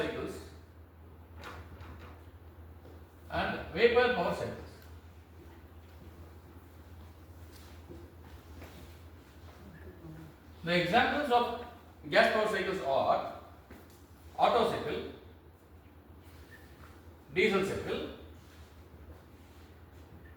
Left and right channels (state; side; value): identical; both; correlation 1.00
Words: and vapor power cycles. The examples of gas power cycles are Otto cycle, diesel cycle,